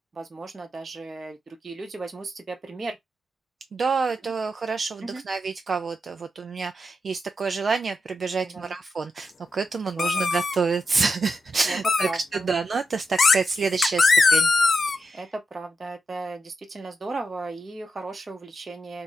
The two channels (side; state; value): both; normal; correlation 0.86